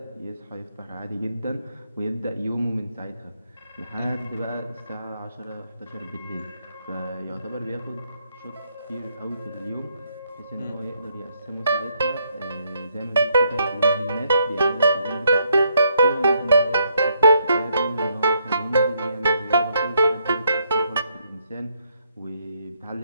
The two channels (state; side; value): inverted; both; correlation -0.74